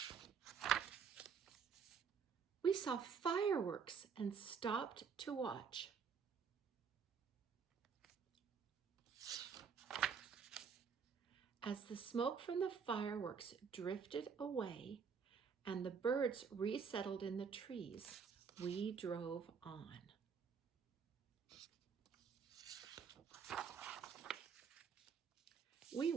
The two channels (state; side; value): quieter; left; 6.3 dB